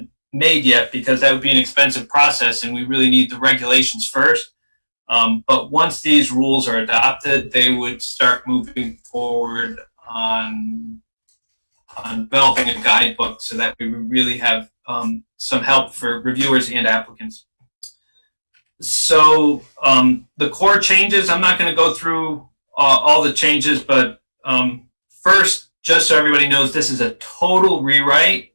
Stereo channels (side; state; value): both; inverted; correlation -1.00